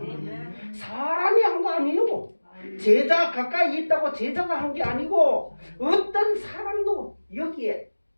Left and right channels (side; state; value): both; inverted; correlation -1.00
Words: 사람이 한 거 아니에요. 제자 가까이 있다고 제자가 한 게 아니고 어떤 사람도 여기에